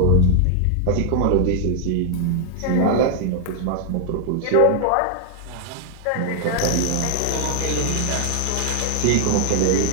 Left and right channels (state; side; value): different; both; correlation 0.00